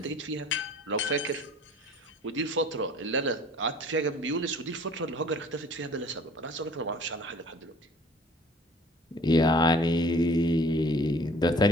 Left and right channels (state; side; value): normal; both; correlation 0.50